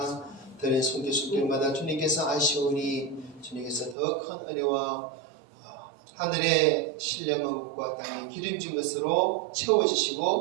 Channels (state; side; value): drops out; left; at 4.0 s